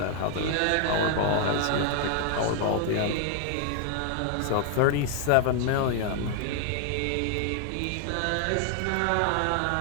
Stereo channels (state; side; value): different; both; correlation 0.00